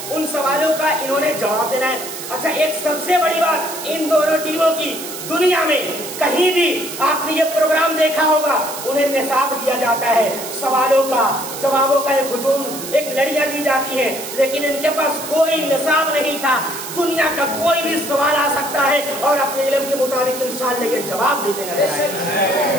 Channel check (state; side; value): noise; right; hiss, 9 dB below the sound